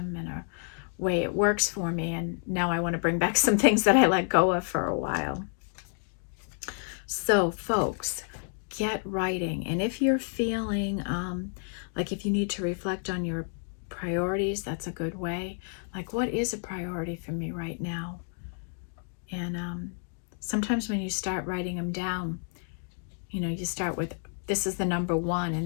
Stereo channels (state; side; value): silent; right; 58 dB below the other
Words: and a way it works for me, and now I want to bring back some things that I let go of for a while. So folks, get writing. And if you're feeling like if you need to reflect on your priorities, that's a good way. Like, what is a priority for me right now? And sometimes when you start writing them down, you know, you start with, this is the number one, and